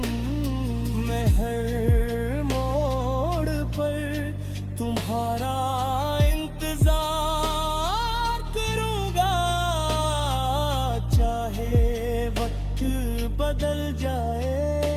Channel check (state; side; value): identical; both; correlation 1.00